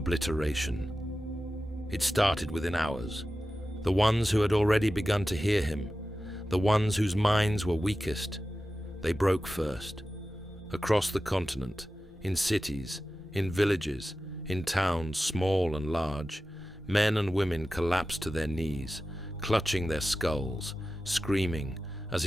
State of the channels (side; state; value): both; normal; correlation 0.94